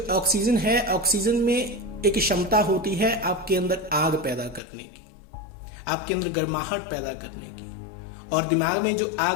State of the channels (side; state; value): right; drops out; at 4.6 s